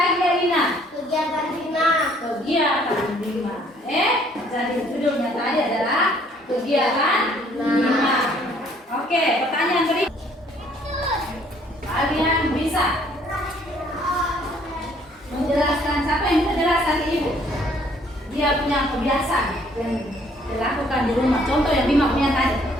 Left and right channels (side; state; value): both; normal; correlation 0.62